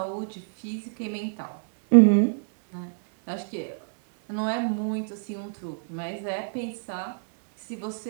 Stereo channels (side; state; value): left; silent; digital silence